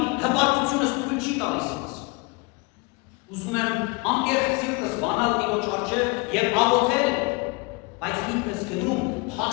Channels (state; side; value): quieter; right; 28.2 dB